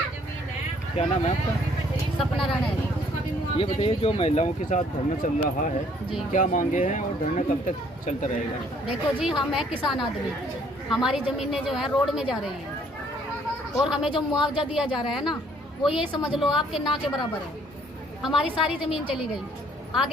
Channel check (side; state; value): both; normal; correlation 0.62